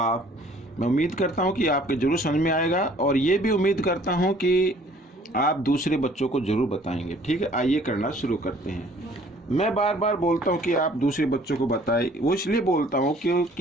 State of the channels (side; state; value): both; normal; correlation 0.56